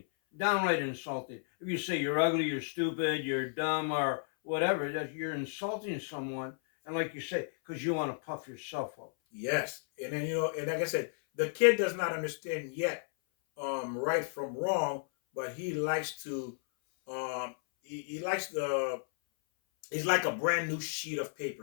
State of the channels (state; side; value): silent; right; 56 dB below the other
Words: Downright insulting. If you say you're ugly, you're stupid, you're dumb, or whatever, that you're insulting someone. And like you say, because you want to puff yourself up. Yes. And then, you know, and like I said, the kid does not understand yet right from wrong, but he likes to, he likes the, he's like a brand new sheet of